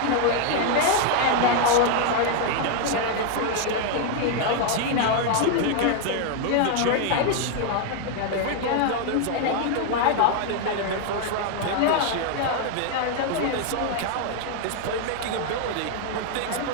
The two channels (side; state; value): both; different; correlation 0.00